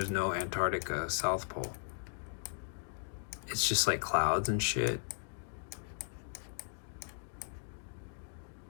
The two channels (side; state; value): right; silent; digital silence